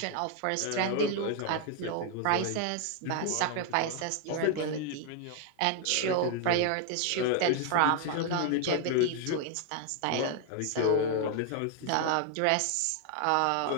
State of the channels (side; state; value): both; different; correlation 0.00